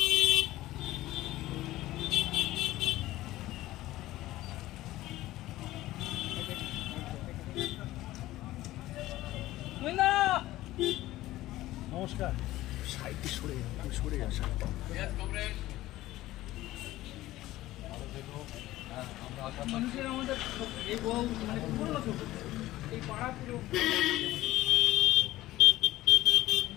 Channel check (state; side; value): quieter; right; 16.2 dB